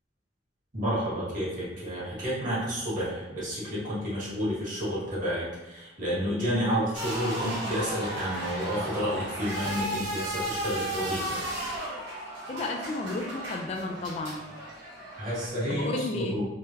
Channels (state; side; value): normal; both; correlation 0.35